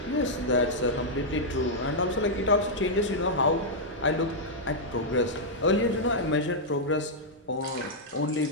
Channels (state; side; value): normal; both; correlation -0.06